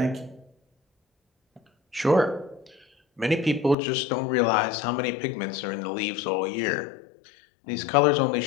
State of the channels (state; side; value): drops out; right; at 3.8 s